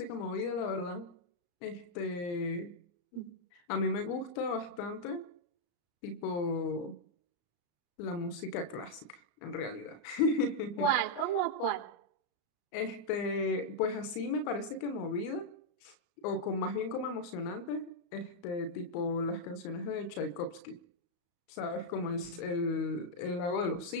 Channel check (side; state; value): right; late; 35 ms